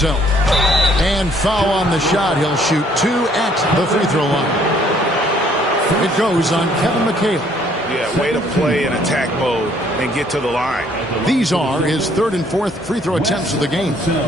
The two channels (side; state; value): both; normal; correlation 0.63